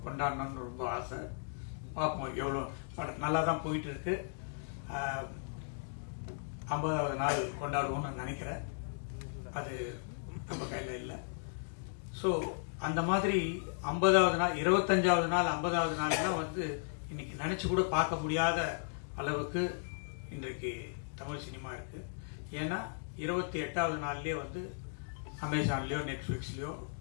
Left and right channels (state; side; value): silent; right; digital silence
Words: கொண்டாடணும்னு ரொம்ப ஆசை. பார்ப்போம், எவ்வளோ படம் நல்லா தான் போயிட்டு இருக்கு. 50வது நாள் கொண்டாடுவோம்னு நினைக்கிறேன். அது நம்ம கையில் இல்லை. ஸோ அந்த மாதிரி 50வது நாள், 25வது நாள், 50வது நாள்லாம் வந்து இன்னைக்கு நினைச்சு கூட பார்க்க முடியாத அளவுக்கு இன்றைக்கு தமிழ் சினிமா இருக்கு. ஏன்னா 28வது நாள்லயே வந்து அமேசான்லயோ நெட்ஃபிளிக்ஸ்லயோ